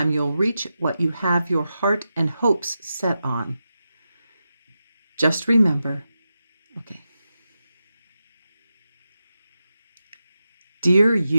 Your heart and hopes set on. Just remember, okay. Dear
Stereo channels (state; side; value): inverted; both; correlation -0.90